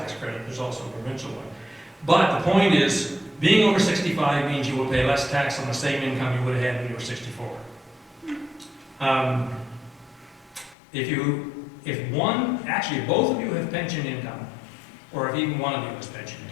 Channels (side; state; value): right; drops out; at 10.8 s